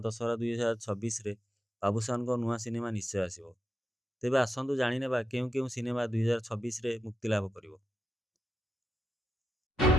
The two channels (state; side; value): normal; both; correlation 0.87